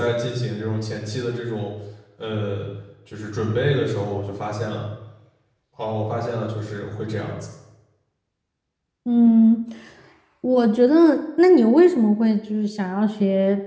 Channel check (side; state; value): both; identical; correlation 1.00